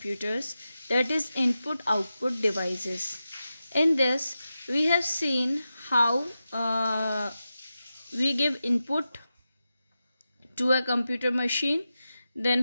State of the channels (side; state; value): both; inverted; correlation -0.91